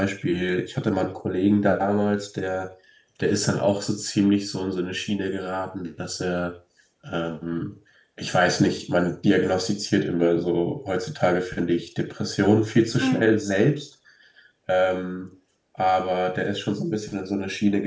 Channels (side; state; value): both; identical; correlation 1.00